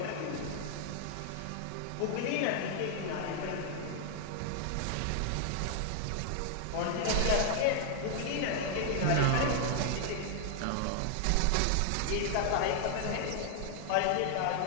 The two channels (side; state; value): both; different; correlation 0.00